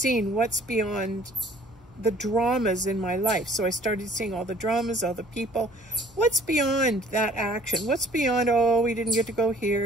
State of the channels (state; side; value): normal; both; correlation 0.55